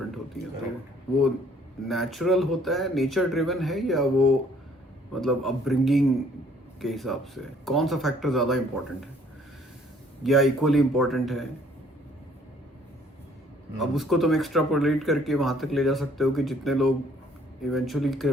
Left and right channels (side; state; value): both; normal; correlation 0.61